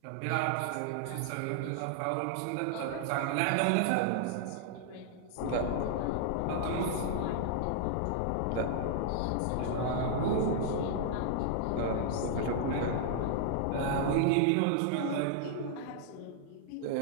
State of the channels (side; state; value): both; different; correlation -0.01